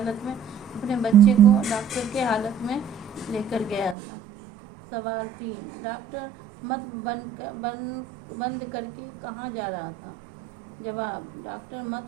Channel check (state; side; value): drops out; left; at 4.0 s